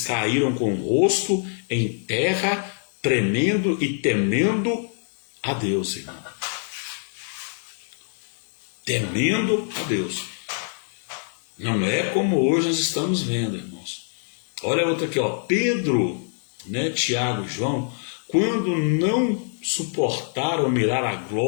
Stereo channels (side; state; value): right; silent; 62 dB below the other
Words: caíram com o rosto em terra, tremendo e temendo a Deus, irmão. Temendo a Deus. Não é como hoje nós estamos vendo, irmãos. Olha outra aqui, Pedro, né, Tiago e João, quando não suportaram mirar a